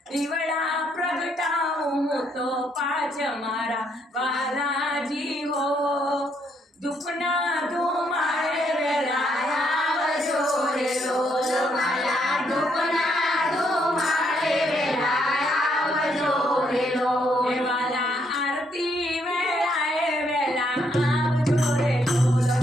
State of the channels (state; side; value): normal; both; correlation 0.73